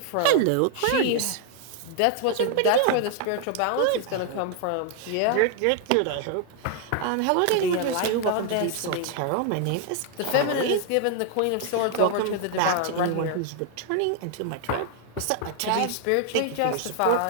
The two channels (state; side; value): different; both; correlation 0.00